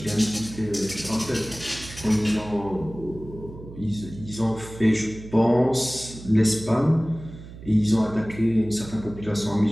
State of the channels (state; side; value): noise; right; hum, 15 dB below the sound